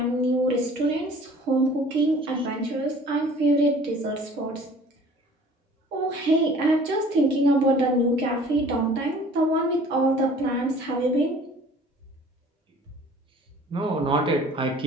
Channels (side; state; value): both; normal; correlation 0.50